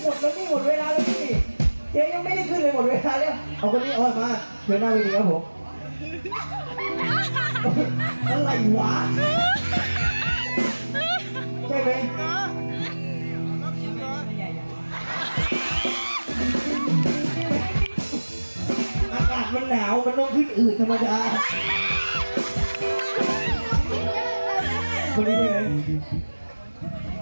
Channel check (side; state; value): both; inverted; correlation -1.00